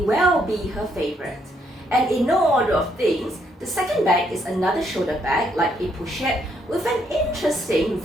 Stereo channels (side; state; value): both; normal; correlation 0.72